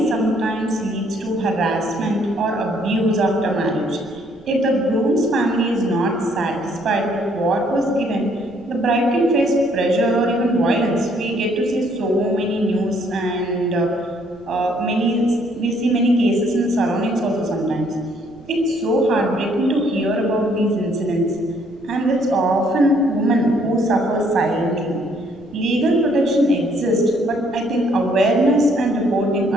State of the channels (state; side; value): noise; right; rumble, 28 dB below the sound